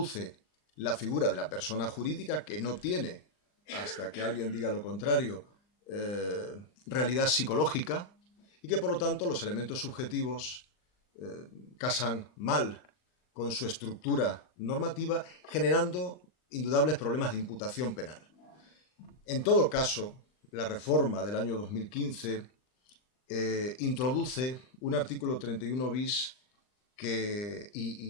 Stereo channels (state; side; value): late; right; 39 ms